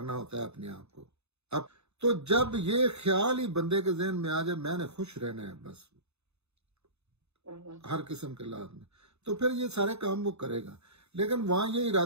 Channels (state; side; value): late; left; 0.80 ms